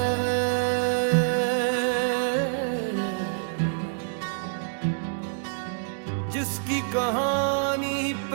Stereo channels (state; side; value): silent; left; digital silence